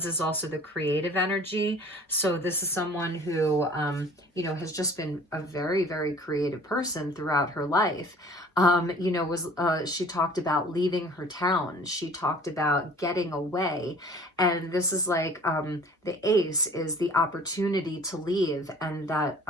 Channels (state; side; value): normal; both; correlation 0.49